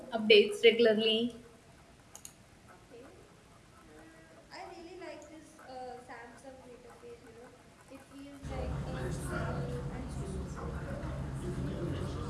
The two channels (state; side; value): identical; both; correlation 1.00